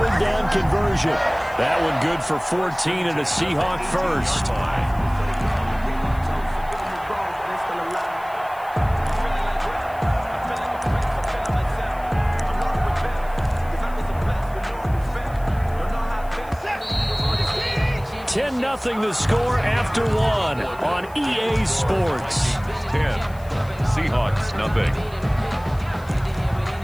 down conversion. That one good for 14 and a Seahawk 1st. Nothing the score after 1 on EA Sports. 10. Seahawks, nothing.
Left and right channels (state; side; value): noise; left; hiss, 25 dB below the sound